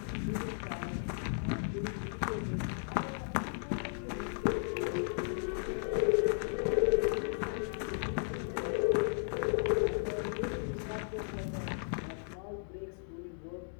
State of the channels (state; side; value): silent; right; digital silence